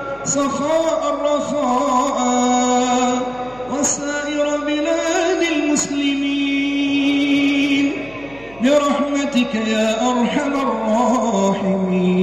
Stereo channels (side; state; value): right; noise; hum, 24 dB below the sound